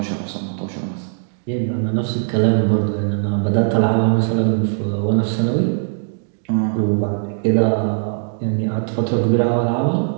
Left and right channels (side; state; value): left; silent; digital silence